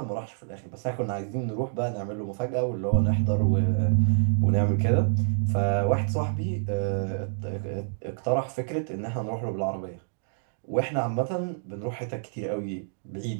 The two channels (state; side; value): silent; left; digital silence